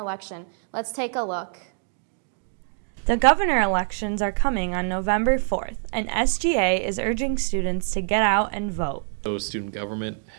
Let's take a look. The governor elections are coming on November 4th, and SGA is urging students to get out and vote. So student government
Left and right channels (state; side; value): silent; left; digital silence